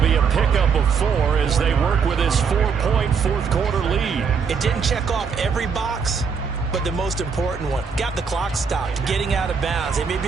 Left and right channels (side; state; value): left; quieter; 5.9 dB